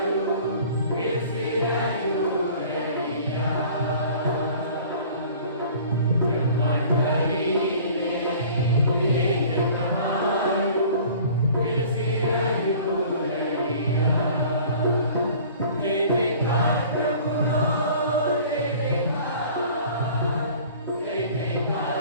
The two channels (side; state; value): both; inverted; correlation -0.47